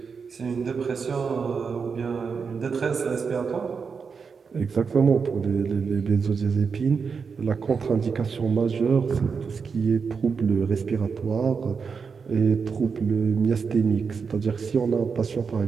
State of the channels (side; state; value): left; quieter; 5.6 dB